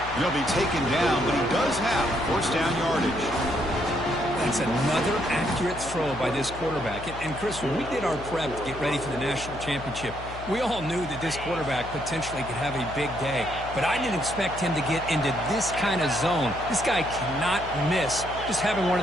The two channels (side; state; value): left; noise; hum, 12 dB below the sound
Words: He'll be taken down, but he does have first down yardage. That's another accurate throw by this quarterback. And Chris, when we did our prep to get ready for the national championship, we all knew that this quarterback potentially could have a big day. But I didn't expect him to get into this kind of zone. This guy cannot miss just having one